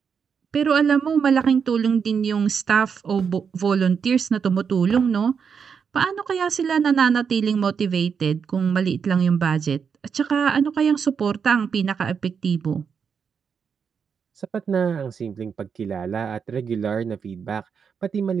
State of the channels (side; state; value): left; quieter; 6.5 dB